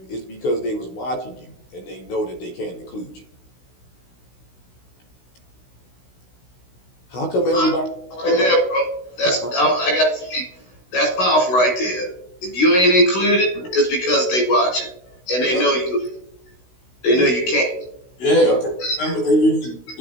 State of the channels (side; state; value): right; late; 16 ms